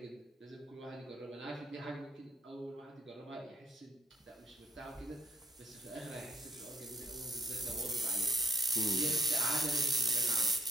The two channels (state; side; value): normal; both; correlation 0.62